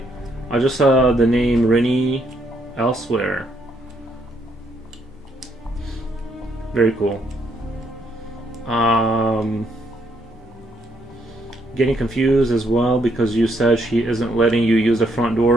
I just saw the name Rini elsewhere. Very cool. Getting confused as well because you said she isn't letting you use the front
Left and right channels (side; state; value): both; normal; correlation 0.73